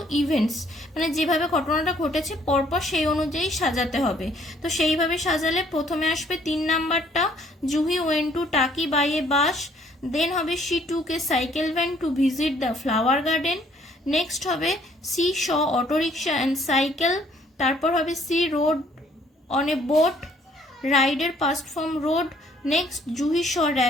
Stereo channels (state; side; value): normal; both; correlation 0.63